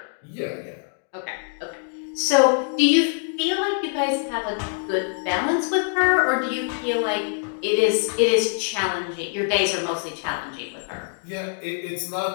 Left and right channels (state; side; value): silent; right; 61 dB below the other